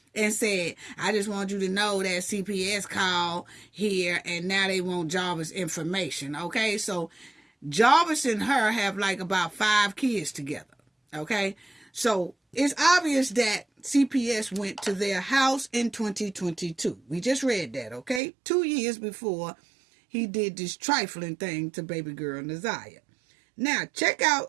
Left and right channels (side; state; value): left; drops out; at 18.2 s